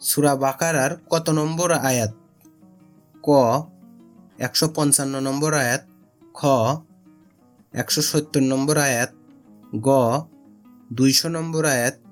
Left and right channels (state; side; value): identical; both; correlation 1.00